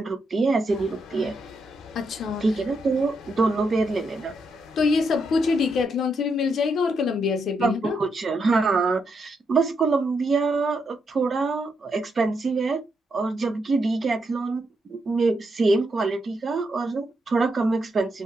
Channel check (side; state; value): both; normal; correlation 0.80